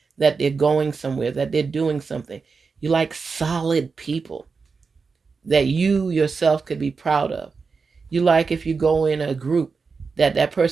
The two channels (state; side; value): quieter; left; 4.9 dB